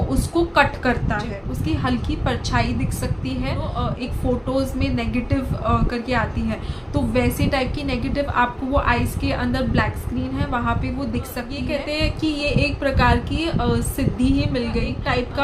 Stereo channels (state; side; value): identical; both; correlation 1.00